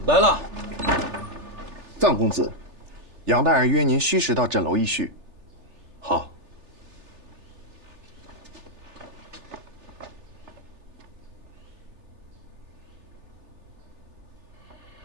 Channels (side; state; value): left; late; 3.4 ms